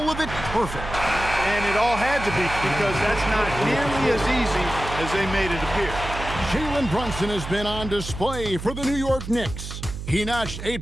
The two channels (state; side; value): noise; right; hum, 8 dB below the sound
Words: of it perfect. And it all had to be because that's not nearly as easy as they made it appear. Jalen Brunson has been on display for the New York Knicks. He notched 8